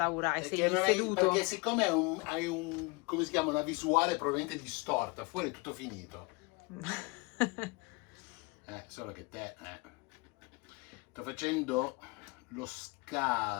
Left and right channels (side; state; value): right; quieter; 27.6 dB